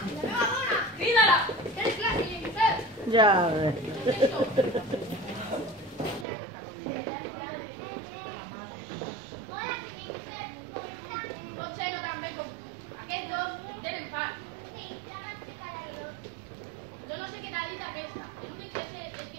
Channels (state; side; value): drops out; left; at 6.2 s